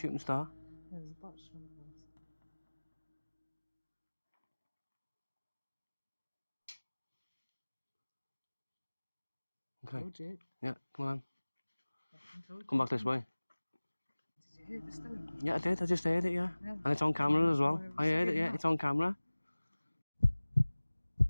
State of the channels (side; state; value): both; inverted; correlation -1.00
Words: star. Yeah, there's a box from us. Okay. Told you. Yeah, come on. Told Come you. back this way. Did you hear the stone? Yeah, I did. I just heard it, yeah. And it's on camera as well. I heard it, yeah. It's on camera.